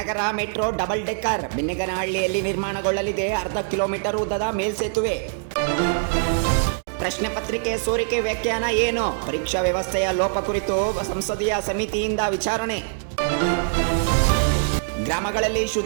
ಮೆಟ್ರೋ ಡಬಲ್ ಡೆಕ್ಕರ್ ಬಿನ್ನಗನಹಳ್ಳಿಯಲ್ಲಿ ನಿರ್ಮಾಣಗೊಳ್ಳಲಿದೆ. 1/2 ಕಿಲೋಮೀಟರ್ ಉದ್ದದ ಮೇಲ್ಸೇತುವೆ. ಪ್ರಶ್ನೆ ಪತ್ರಿಕೆ ಸೋರಿಕೆ ವ್ಯಾಖ್ಯಾನ ಏನು? ಪರೀಕ್ಷಾ ವ್ಯವಸ್ಥೆಯ ಲೋಪ ಕುರಿತು ಸಂಸದೀಯ ಸಮಿತಿಯಿಂದ ವಿಚಾರಣೆ. ಗ್ರಾಮಗಳಲ್ಲಿ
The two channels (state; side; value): silent; left; digital silence